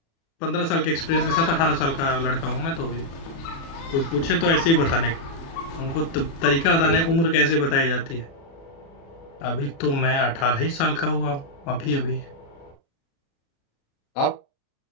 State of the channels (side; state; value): right; late; 36 ms